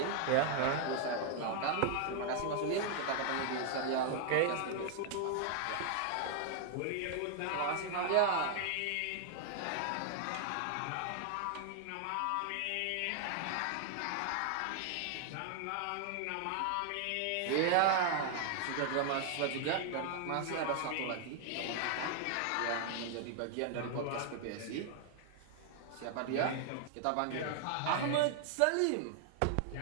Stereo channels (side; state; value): both; different; correlation 0.00